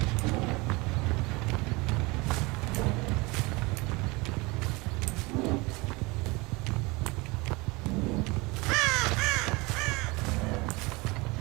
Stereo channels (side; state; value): left; quieter; 24.9 dB